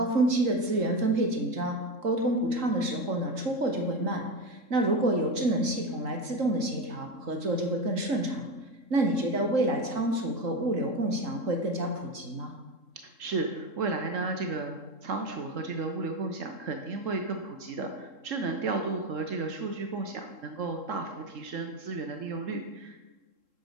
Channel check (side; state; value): left; late; 3.7 ms